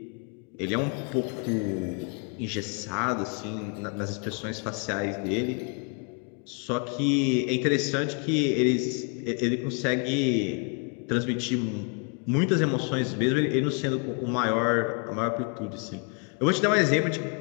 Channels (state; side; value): quieter; right; 37.6 dB